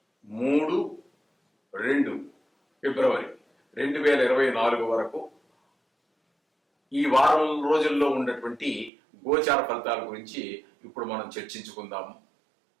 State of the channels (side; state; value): left; drops out; at 8.9 s